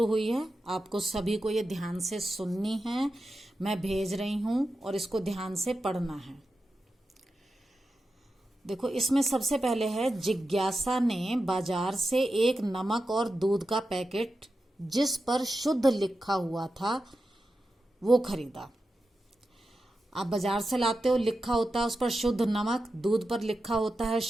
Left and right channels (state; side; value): normal; both; correlation 0.91